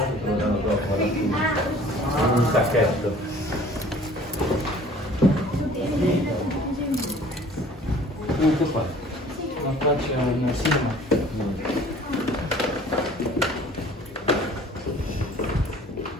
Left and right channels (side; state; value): both; normal; correlation 0.50